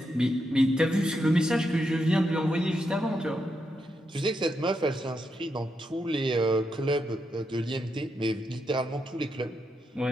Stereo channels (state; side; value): normal; both; correlation 0.83